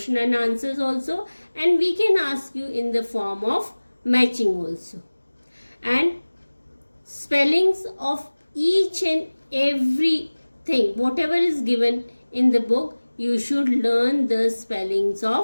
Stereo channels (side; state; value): both; inverted; correlation -1.00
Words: and answers also, and we can ask you in the form of matching also. And spellings of each and everything, whatever is given in the book, you should learn the spellings